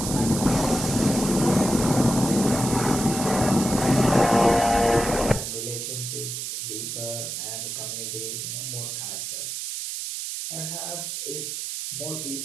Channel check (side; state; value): right; noise; hiss, 5 dB below the sound